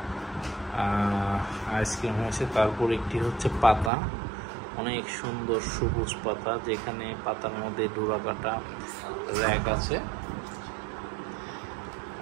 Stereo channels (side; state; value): left; drops out; at 3.9 s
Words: আইসক্রিম হয়েছে। তারপর একটি হচ্ছে পাতা, অনেক সুন্দর সবুজ পাতা, যেখানে পাতার মধ্যে ডোরা কাটা র্যাক আছে